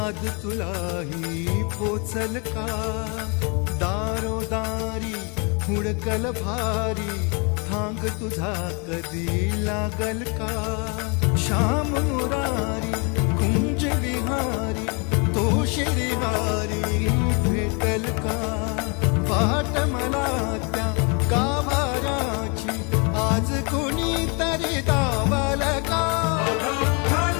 तुलाही पोचल का दारोदारी हुडकल भारी थांग तुझा कधी लागल का श्याम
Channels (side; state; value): right; quieter; 33.2 dB